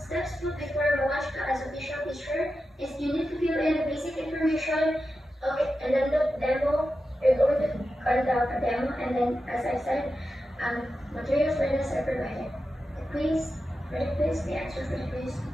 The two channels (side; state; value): both; normal; correlation 0.90